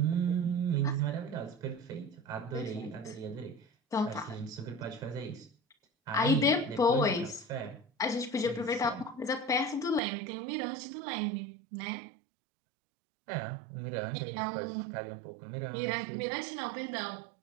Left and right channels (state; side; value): drops out; left; at 10.0 s